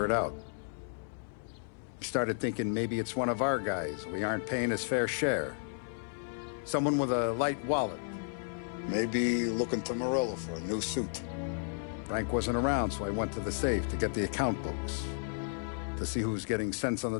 it out. I started thinking maybe it's one of our guys. We aren't paying his fair share. Someone with a light wallet. Maybe looking to Morello for a new suit. Frank wasn't around, so I went to the safe to get the account books. To see who's getting cents on the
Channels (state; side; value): silent; right; 56 dB below the other